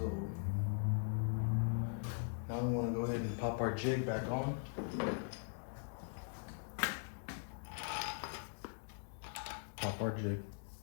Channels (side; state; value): right; silent; digital silence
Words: now I'm gonna go ahead and pop our jig back on. Pop our jig